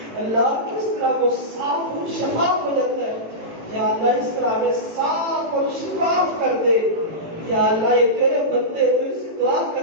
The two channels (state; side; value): late; left; 18 ms